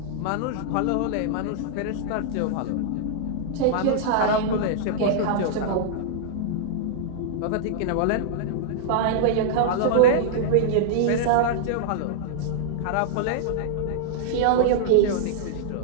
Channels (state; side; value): different; both; correlation -0.02